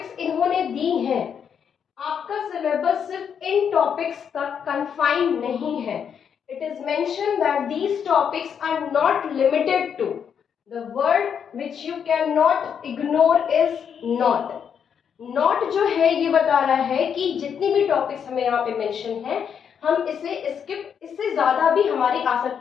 इन्होंने दी हैं, आपका सिलेबस सिर्फ इन टॉपिक्स तक कन्फाइंड नहीं है। It is mention that these topics are not limited to. The word which you cannot ignore is not. Not जो है ये बता रहा है कि जितनी भी टॉपिक्स हमें यहाँ पे मेंशन है, हम इसे स्किप, इससे ज्यादा भी हमारे आ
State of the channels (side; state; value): right; quieter; 7.6 dB